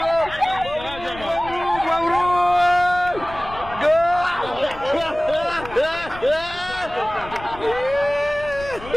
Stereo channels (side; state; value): left; noise; rumble, 16 dB below the sound